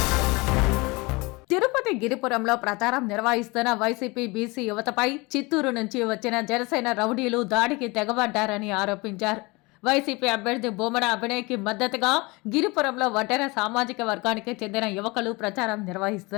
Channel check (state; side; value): quieter; right; 25.0 dB